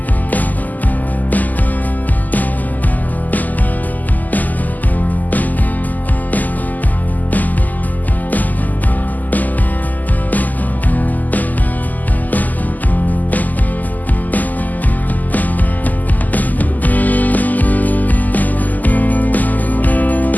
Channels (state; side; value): late; right; 0.082 ms